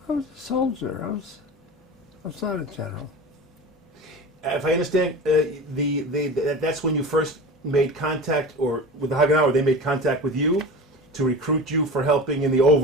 I was a soldier. I was not a general. If I understand, that's when you first made contact, or with the Haganah, or they made contact with you to recruit you for helping in the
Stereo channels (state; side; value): normal; both; correlation 0.32